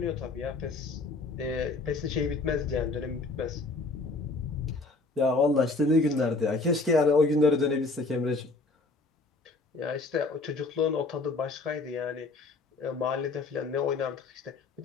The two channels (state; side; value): quieter; right; 3.5 dB